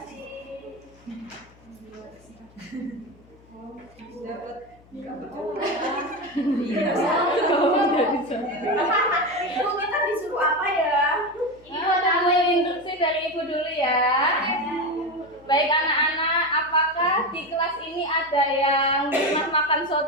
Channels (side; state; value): left; noise; hum, 27 dB below the sound